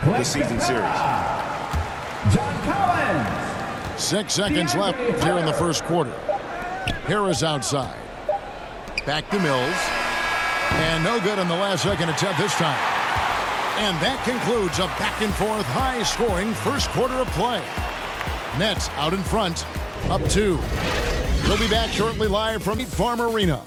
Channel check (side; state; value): both; identical; correlation 1.00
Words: the season series. John Collins. 6 seconds left here in the first quarter. Harris outside. Back to Mills. And no good on the last second attempt this time. And that concludes a back-and-forth, high-scoring first quarter of play. Nets out in front, up 2. We'll be back shortly live from Farm Arena.